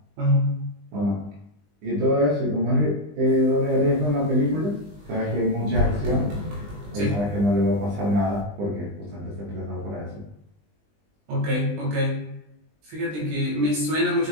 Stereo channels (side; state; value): left; late; 20 ms